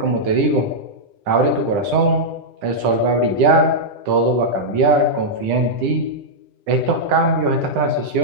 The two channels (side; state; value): left; late; 9.9 ms